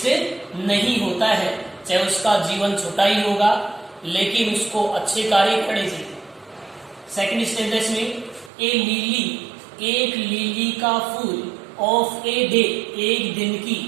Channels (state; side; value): drops out; left; at 8.5 s